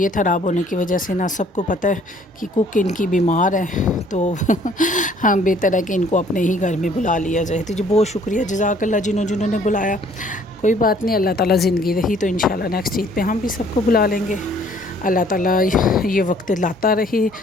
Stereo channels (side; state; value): both; normal; correlation 0.59